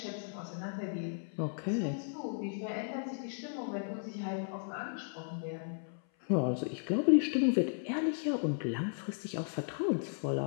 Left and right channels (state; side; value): silent; right; 54 dB below the other